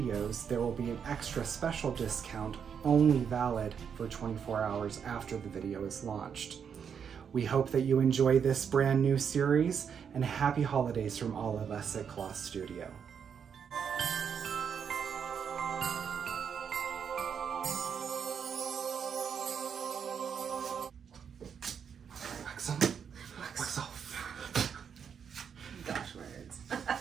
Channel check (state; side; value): quieter; left; 7.3 dB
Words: there will be an extra special discount only valid for 24 hours after the video is launched. We hope that you enjoy this brand new series, and happy holidays from all of us at Kloth Studio. Wax on, wax off. Gosh, words.